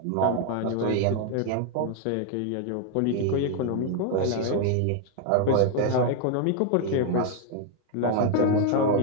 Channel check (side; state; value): both; different; correlation 0.01